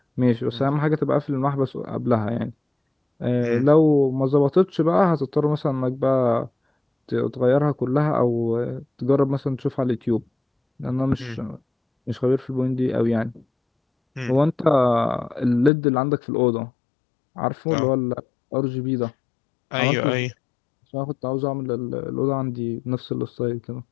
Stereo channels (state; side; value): drops out; right; at 15.7 s